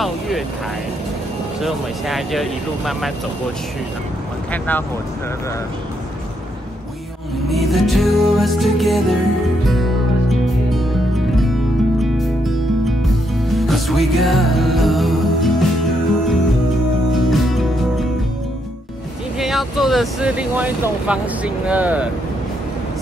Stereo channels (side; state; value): both; normal; correlation 0.77